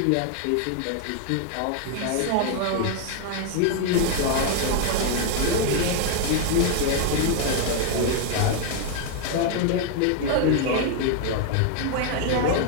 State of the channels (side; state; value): both; different; correlation 0.00